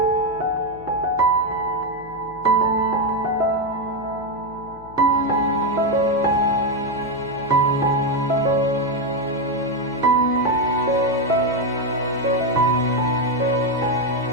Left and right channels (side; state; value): left; noise; hum, 21 dB below the sound